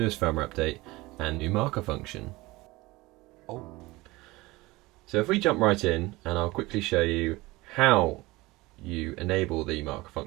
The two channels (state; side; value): quieter; left; 21.0 dB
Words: firmware update and new marker function. So if we jump right in, and I'll quickly show you how you enable the marker